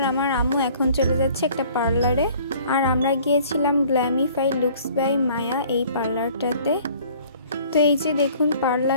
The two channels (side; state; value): both; inverted; correlation -0.53